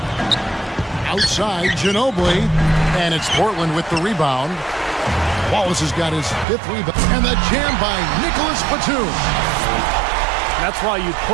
Outside, Ginobili. And it's Portland with the rebound. Wallace has got his 5th rebound. And the jam by Nicholas Batum. That's why you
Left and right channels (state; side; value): drops out; left; at 6.5 s